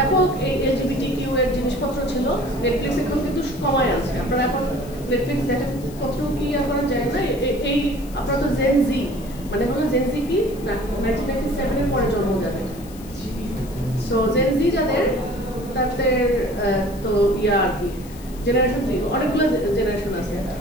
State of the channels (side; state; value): left; noise; hiss, 21 dB below the sound